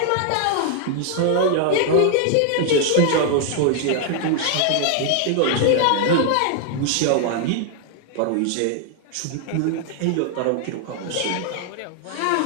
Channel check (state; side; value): different; both; correlation 0.00